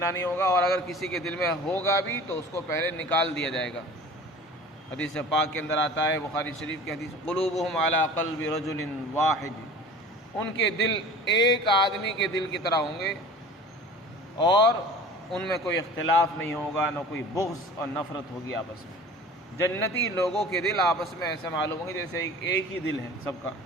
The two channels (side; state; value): both; normal; correlation 0.42